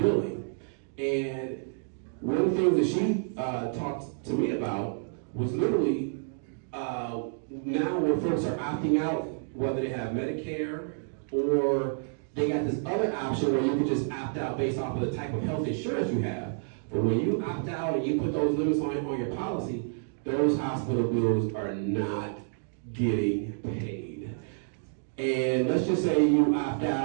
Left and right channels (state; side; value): silent; left; digital silence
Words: And one of the things that she talked to me about was literally now when folks are opting out, whether they have Medicare or they got this other option where you can just opt out based off of the type of health insurance you have. But when you opt out and you put those limits on your policy, those hospital bills are not getting paid. And let's just say you opt